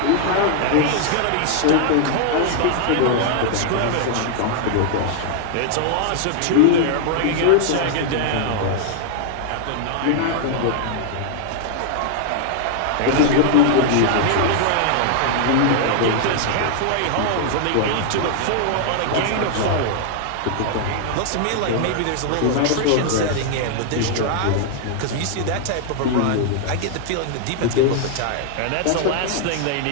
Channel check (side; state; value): both; different; correlation 0.00